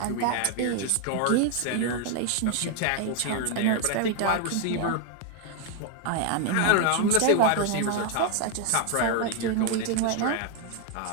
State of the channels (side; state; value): both; different; correlation 0.01